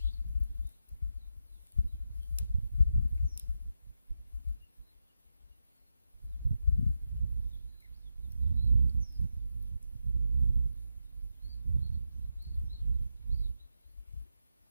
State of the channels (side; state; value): both; inverted; correlation -0.87